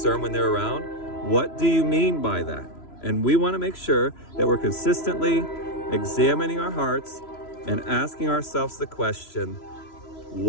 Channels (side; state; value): right; late; 3.0 ms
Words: when they're around. What do you mean by that? And we want to make sure that we're consistently examining our hearts and asking ourselves the question,